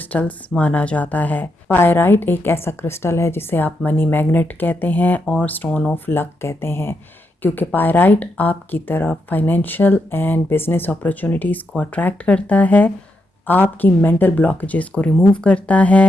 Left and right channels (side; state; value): both; normal; correlation 0.82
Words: माना जाता है। पायराइट एक ऐसा क्रिस्टल है जिसे आप मनी मैग्नेट कहते हैं और स्टोन ऑफ लक कहते हैं, क्योंकि पायराइट आपकी तरफ फाइनेंशियल एंड बिजनेस अपॉर्चुनिटीज़ को अट्रैक्ट करता है, आपकी मेंटल ब्लॉकेजेस को रिमूव करता